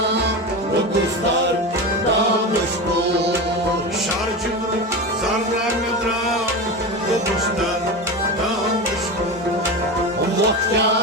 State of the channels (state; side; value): normal; both; correlation 0.23